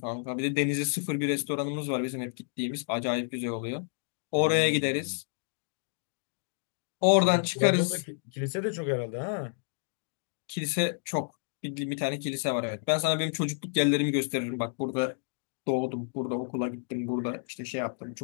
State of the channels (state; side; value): silent; right; digital silence